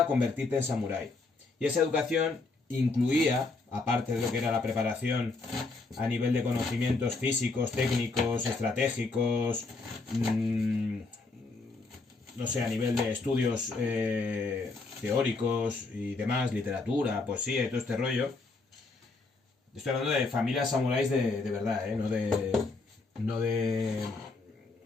a convertirte en samurái. Y esa educación incluía, aparte de lo que era la preparación a nivel de conocimientos físicos, técnicos, estratégicos, no sé, a nivel de estudios teóricos y demás, literatura, poesía y todo este rollo. Estoy hablando de familias samuráis de verdad, no de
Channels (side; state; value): right; quieter; 3.6 dB